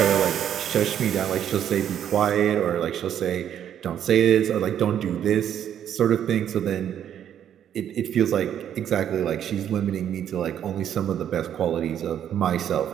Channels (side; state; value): left; quieter; 9.8 dB